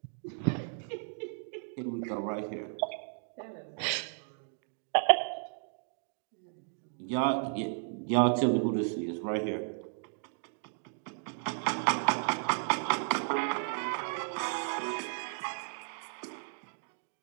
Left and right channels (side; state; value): left; silent; digital silence